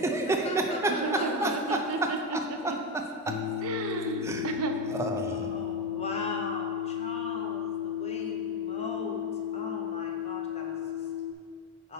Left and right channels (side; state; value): both; normal; correlation 0.10